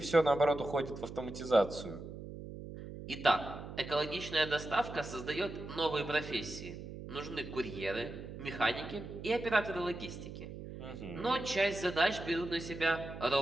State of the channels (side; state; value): right; noise; hum, 10 dB below the sound